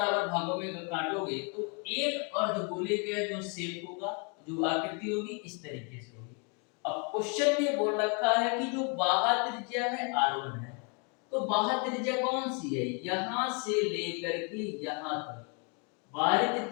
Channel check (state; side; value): quieter; right; 35.0 dB